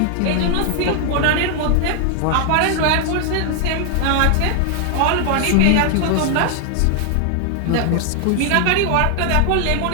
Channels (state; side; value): different; both; correlation 0.00